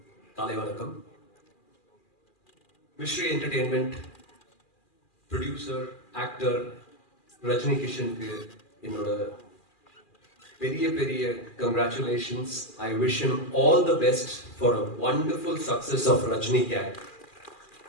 காலை வணக்கம். Mystery entertainment producer actor Rajini கிஷனுக்கு என்னோட பெரிய பெரிய congratulations. I wish him all the best for a wonderful success of Rajini gang.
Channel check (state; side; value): late; right; 2.4 ms